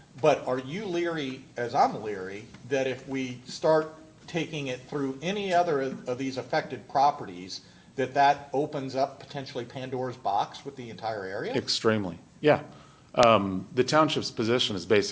But are you leery, as I'm leery, that if we start taking it through any other of these affected properties, that opens up potentially Pandora's box with the entire area? Extremely, yeah. The township's position is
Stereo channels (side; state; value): both; identical; correlation 1.00